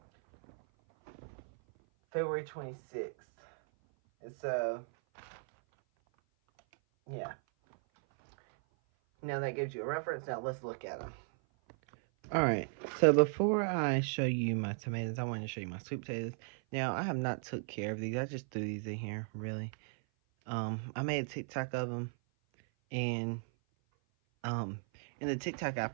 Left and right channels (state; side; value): silent; left; 54 dB below the other